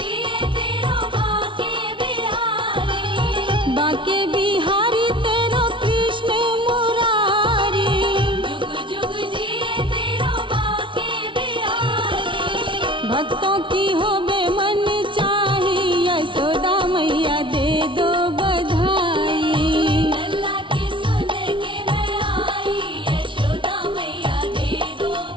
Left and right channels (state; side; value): late; left; 0.24 ms